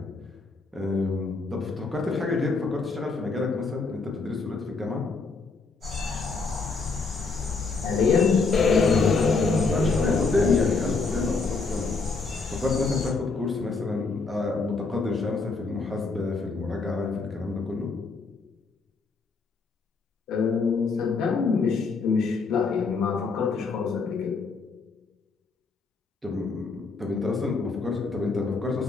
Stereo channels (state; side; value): quieter; right; 4.2 dB